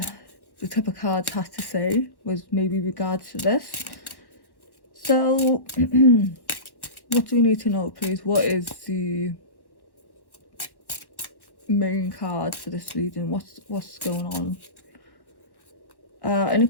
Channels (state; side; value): late; right; 1.1 ms